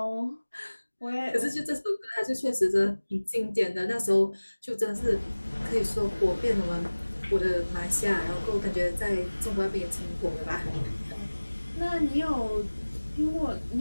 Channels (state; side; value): inverted; both; correlation -1.00